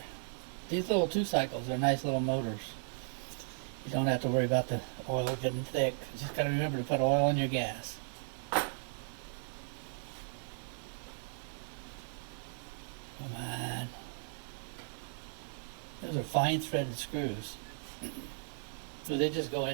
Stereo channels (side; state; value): left; silent; digital silence